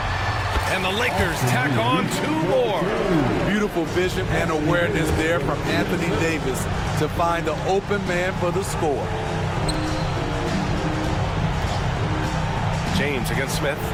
and the Lakers tack on 2 more. Beautiful vision and awareness there from Anthony Davis to find the open man for the score. James against Smith.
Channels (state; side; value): identical; both; correlation 1.00